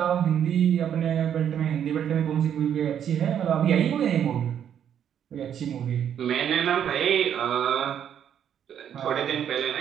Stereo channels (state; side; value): quieter; left; 9.2 dB